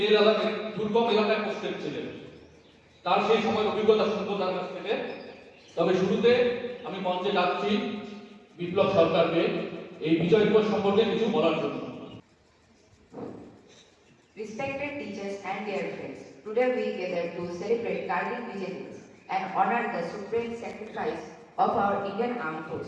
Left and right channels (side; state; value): both; identical; correlation 1.00